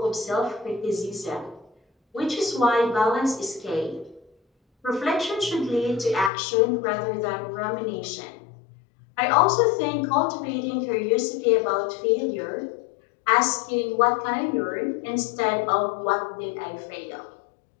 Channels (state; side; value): drops out; right; at 6.3 s